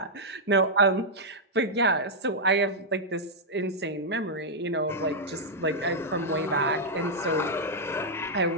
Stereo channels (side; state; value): both; normal; correlation -0.05